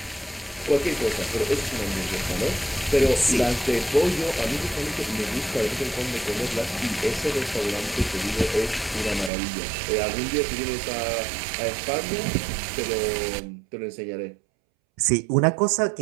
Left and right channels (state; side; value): drops out; left; at 9.3 s